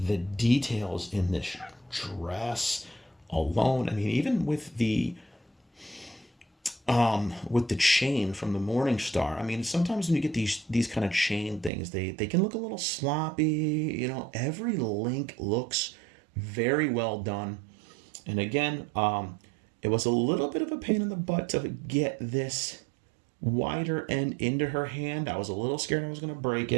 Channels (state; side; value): drops out; left; at 11.7 s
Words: details in this dress alone, I mean, even with the chain from the Morning Star. I mean, sometimes when you get these kind of chain things, they can look a little sloppy. Every link looks very well done. And again, it was a little bit of a pain in the butt to get this wider end into her hand. I was a little scared I was going to break